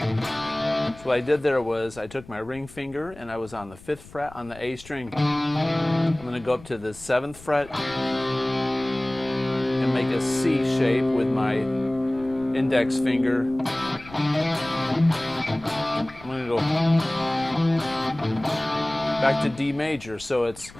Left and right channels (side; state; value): left; noise; rumble, 20 dB below the sound